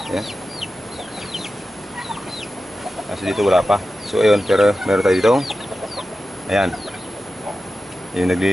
Ayan. Kasi dito wala pa. So, ayun, pero meron tayo dito. Ayan. Yung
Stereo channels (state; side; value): normal; both; correlation 0.93